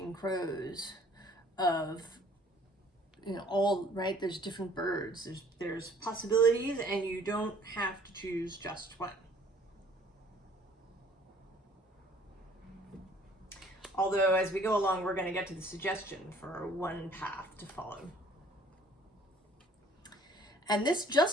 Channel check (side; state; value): both; normal; correlation 0.56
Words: Crows of, right? There's different birds. There's possibilities and you don't have to choose just one. Although as we go along, we're going to get to the suggestion for one path to follow. And this